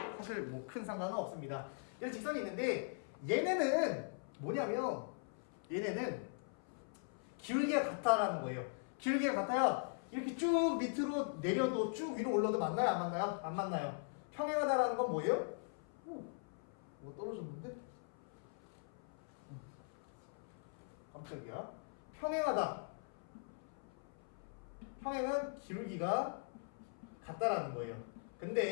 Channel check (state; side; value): silent; right; 51 dB below the other